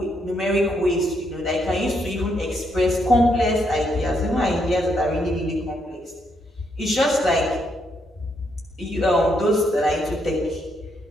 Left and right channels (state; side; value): normal; both; correlation 0.76